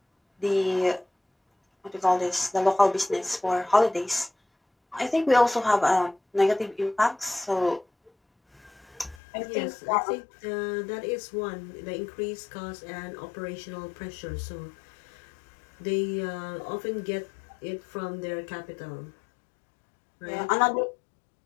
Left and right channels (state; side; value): drops out; right; at 9.2 s